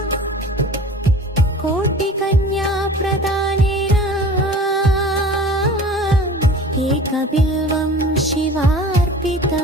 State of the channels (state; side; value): normal; both; correlation 0.42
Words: कोटिकन्या प्रदानेन एकबिल्वं